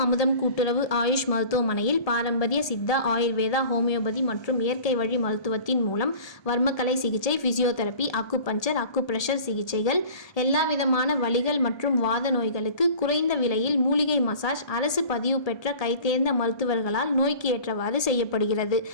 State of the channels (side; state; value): right; late; 1.2 ms